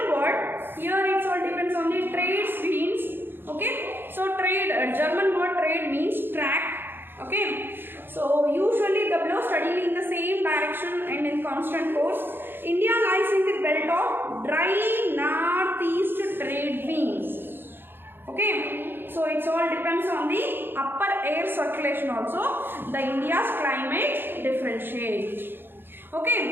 word, here it all depends on the trade means. Okay, so trade, German word trade means track. Okay, so So usually the blow steadily in the same direction and in constant course. India lies in the belt of dry northeast trade winds. Okay, so it all depends on the upper air circulation also. The India's climate differentiates.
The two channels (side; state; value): left; late; 0.10 ms